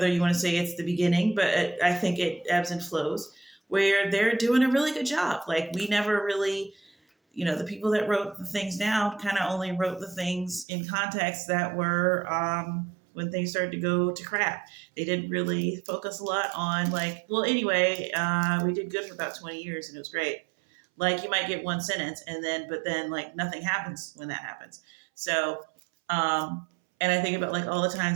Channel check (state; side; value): drops out; left; at 10.7 s